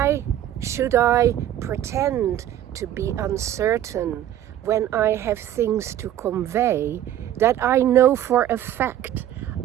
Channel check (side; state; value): left; quieter; 11.8 dB